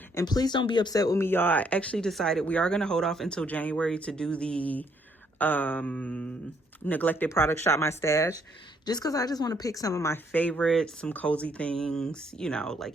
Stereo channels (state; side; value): normal; both; correlation 0.69